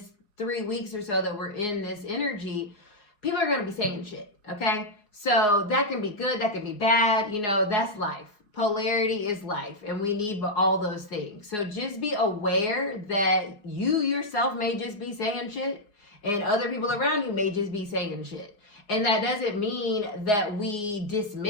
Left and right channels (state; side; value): late; right; 4.8 ms